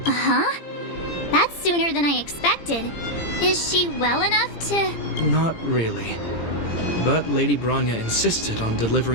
Uh-huh. That's sooner than I expected. Is she well enough to... Not really. But Lady Bronya insisted on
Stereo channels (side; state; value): right; late; 18 ms